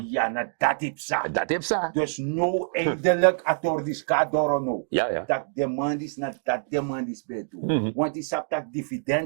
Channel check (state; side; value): silent; left; digital silence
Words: Ja, na dat is sa. Dat heeft ze. Dus no eindelijk atordis kadoro no. Ja. Dat demand is na dat demand is bij toe. Want die sap dat